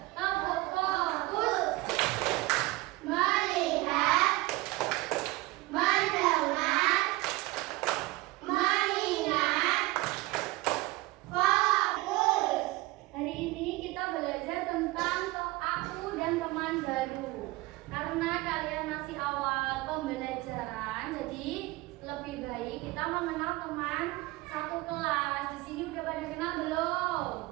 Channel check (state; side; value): quieter; left; 20.6 dB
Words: Tepuk fokus. Melihat, mendengar, mengingat, fokus. Hari ini kita belajar tentang aku dan teman baru. Karena kalian masih awal pembelajaran, jadi lebih baik kita mengenal teman satu kelas. Di sini udah pada kenal belum?